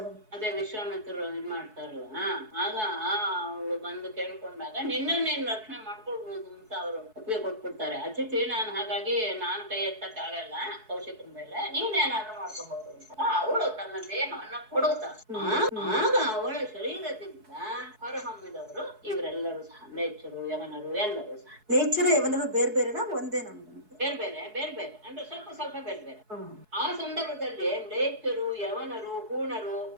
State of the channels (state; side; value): late; left; 4.7 ms